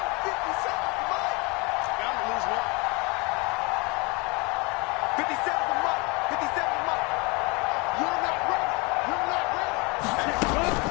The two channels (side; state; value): right; quieter; 28.3 dB